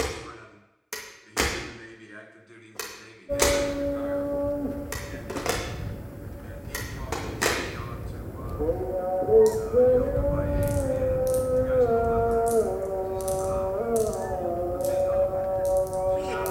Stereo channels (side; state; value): both; identical; correlation 1.00